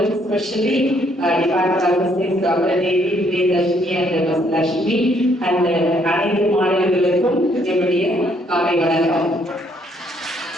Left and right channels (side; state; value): both; normal; correlation 0.68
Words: specially department of physics doctor Devi, Priyadharshini and Lakshmi and அனைத்து மாணவர்களுக்கும் என்னுடைய காலை வணக்கம்.